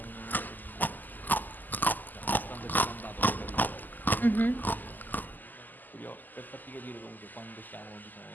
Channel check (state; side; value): late; right; 0.086 ms